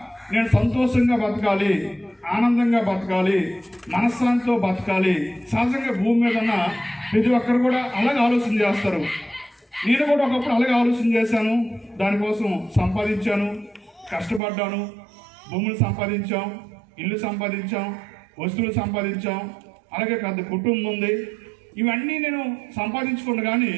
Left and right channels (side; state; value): left; drops out; at 14.4 s